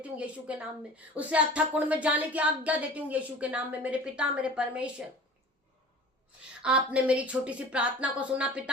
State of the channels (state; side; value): normal; both; correlation 0.42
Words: हूँ यीशु के नाम में, उसे अथक कुंड में जाने की आज्ञा देती हूँ यीशु के नाम में। मेरे पिता मेरे परमेश्वर, आपने मेरी छोटी सी प्रार्थना को सुना